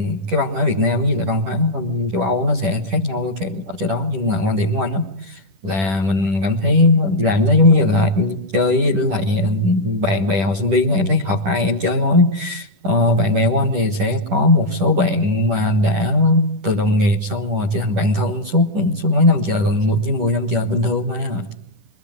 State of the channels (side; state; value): left; late; 10 ms